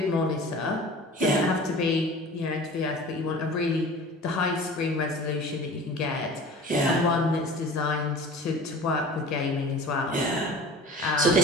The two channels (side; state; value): both; normal; correlation 0.41